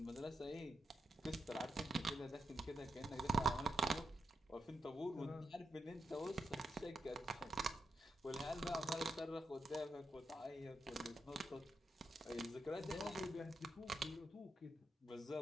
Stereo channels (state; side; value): normal; both; correlation 0.84